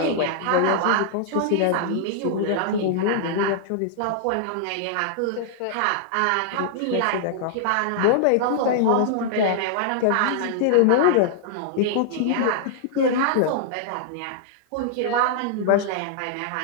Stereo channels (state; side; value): different; both; correlation -0.01